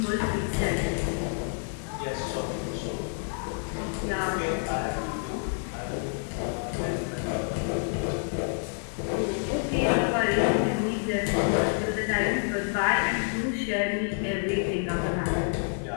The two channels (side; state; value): right; silent; 59 dB below the other